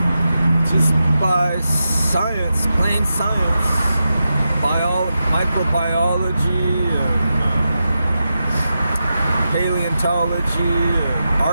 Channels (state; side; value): inverted; both; correlation -0.89